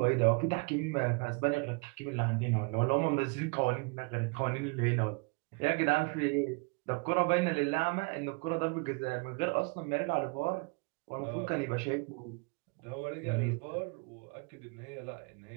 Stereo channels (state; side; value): quieter; left; 30.6 dB